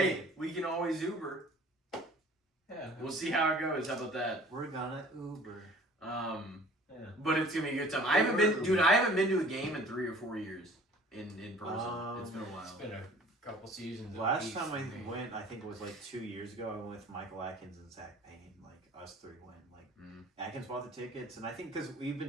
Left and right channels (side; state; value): both; normal; correlation 0.49